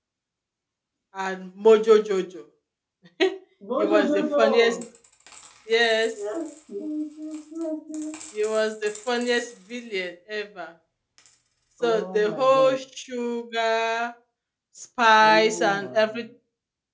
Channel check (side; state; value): both; identical; correlation 1.00